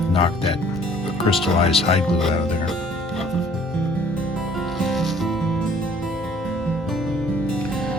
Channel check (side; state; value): both; normal; correlation 0.56